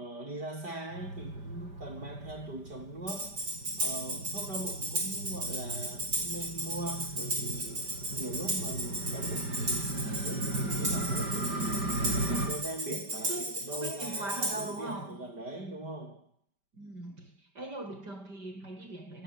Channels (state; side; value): late; left; 5.1 ms